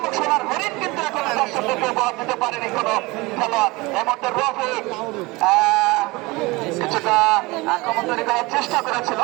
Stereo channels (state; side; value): quieter; left; 23.0 dB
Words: সোনার হরিণ কিন্তু এখন দর্শকদেরকে বরাদ দিতে পারেনি কোনো খেলোয়াড়। এর মধ্যে রফিক কিছুটা আক্রমণ তৈরি করার চেষ্টা করেছিল,